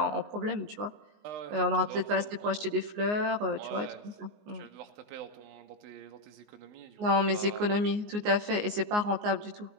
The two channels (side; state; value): left; late; 19 ms